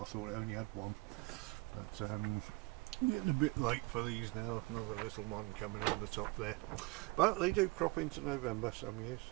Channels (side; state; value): left; quieter; 24.3 dB